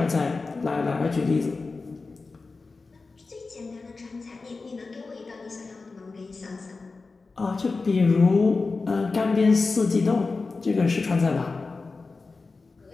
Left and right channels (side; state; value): right; quieter; 4.0 dB